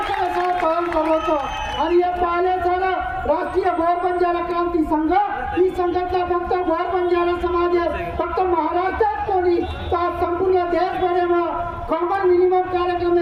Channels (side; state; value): both; identical; correlation 1.00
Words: करायचा काम करतो आणि हे पाहिलेचा राष्ट्रीय गौर बंजारा क्रांती संघ ही संघटना फक्त गौर बंजारा समाज फक्त महाराष्ट्रात कोणी तर संपूर्ण देशभरात कॉमन मिनिमम कार्यक्रम